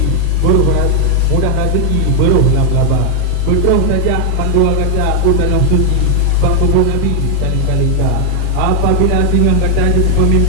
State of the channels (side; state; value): both; different; correlation 0.01